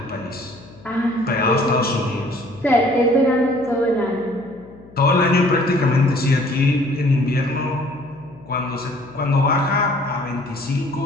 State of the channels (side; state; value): left; noise; hum, 22 dB below the sound